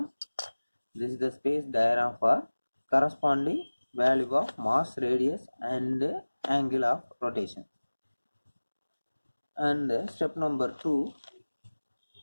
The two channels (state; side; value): inverted; both; correlation -1.00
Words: This is the space diagram for corresponding value of mass, radius, and angle of rotation. And step number 2,